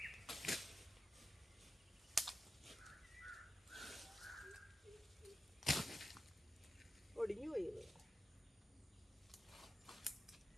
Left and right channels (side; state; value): both; normal; correlation 0.92